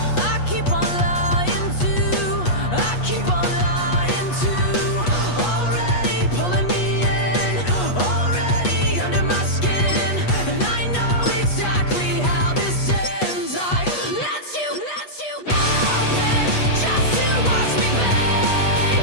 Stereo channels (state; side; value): late; right; 8.3 ms